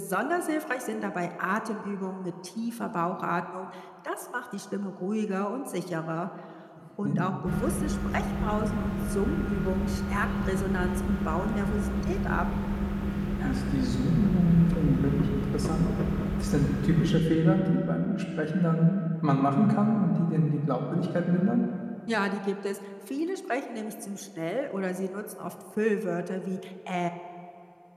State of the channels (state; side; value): identical; both; correlation 1.00